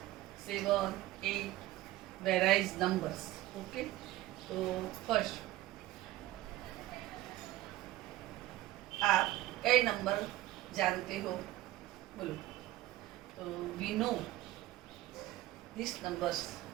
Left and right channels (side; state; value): left; quieter; 16.0 dB